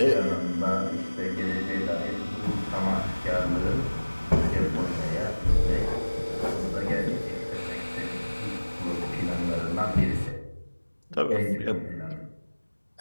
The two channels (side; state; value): both; inverted; correlation -1.00